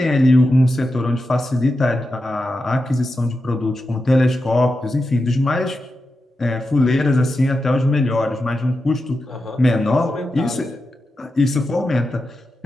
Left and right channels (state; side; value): normal; both; correlation 0.89